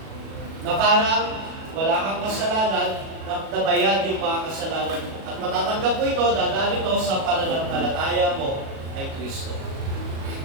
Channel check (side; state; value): left; late; 37 ms